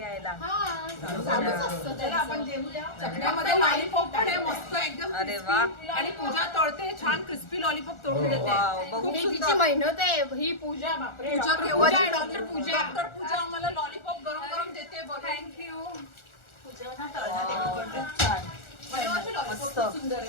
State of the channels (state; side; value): late; right; 1.4 ms